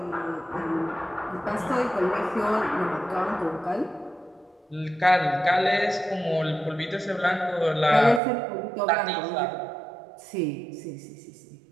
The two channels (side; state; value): left; drops out; at 8.2 s